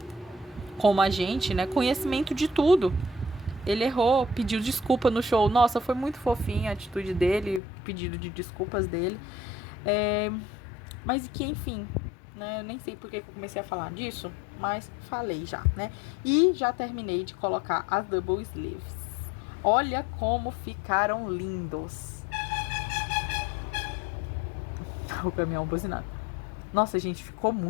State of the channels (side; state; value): right; drops out; at 7.6 s